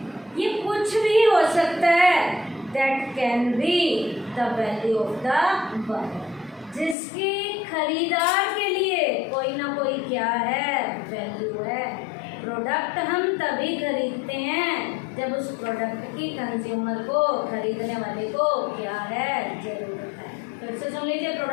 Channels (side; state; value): right; drops out; at 7.0 s